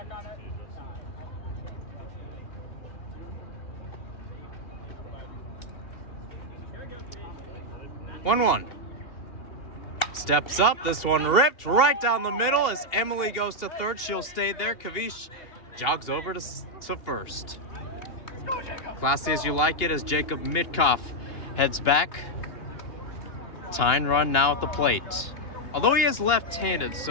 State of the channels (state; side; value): late; right; 2.9 ms